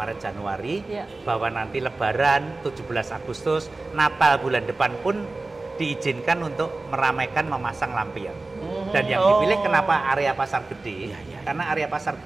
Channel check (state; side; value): quieter; left; 3.3 dB